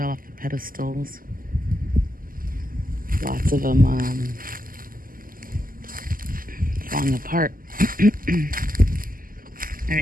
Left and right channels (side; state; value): left; late; 0.41 ms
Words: off the pedestals. Lots of them falling apart. All